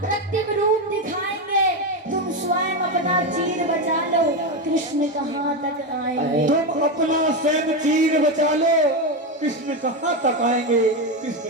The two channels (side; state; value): both; normal; correlation 0.12